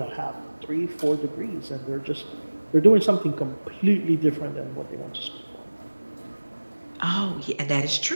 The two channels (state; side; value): inverted; both; correlation -1.00